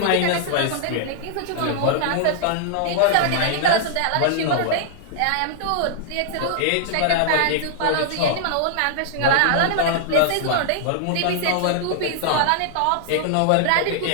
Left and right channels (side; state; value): both; different; correlation -0.01